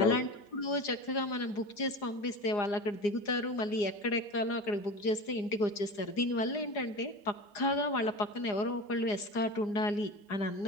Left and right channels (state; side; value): late; right; 4.9 ms